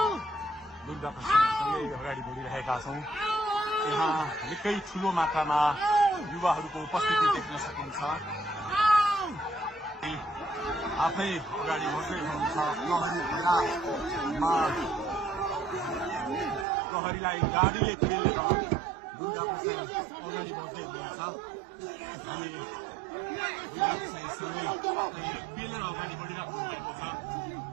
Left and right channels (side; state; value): left; drops out; at 16.7 s